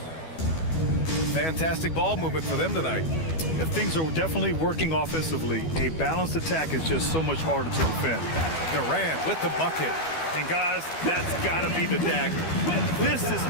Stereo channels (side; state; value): right; late; 12 ms